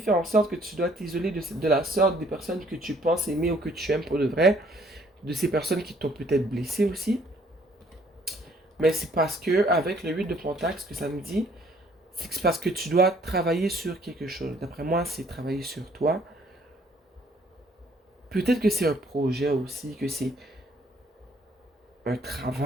en sorte que tu dois t'isoler de la sorte des personnes que tu penses aimer ou que tu aimes pour de vrai, de ces personnes qui t'ont peut-être blessé aussi. Mais c'est parce que, avec le 8 de Pentacle, ce que ça me dit, c'est que c'est parce que tu dois travailler sur quelque chose. D'après moi, c'est travailler sur toi. Peut-être que c'est un projet aussi, que c'est un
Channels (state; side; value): normal; both; correlation 0.62